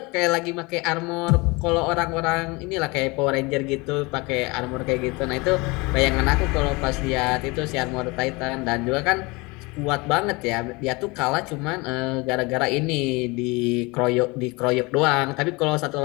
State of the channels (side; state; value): right; quieter; 25.5 dB